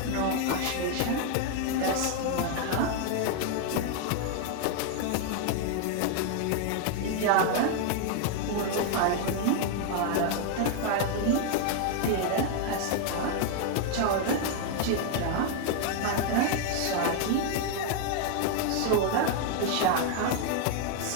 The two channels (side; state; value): both; different; correlation 0.00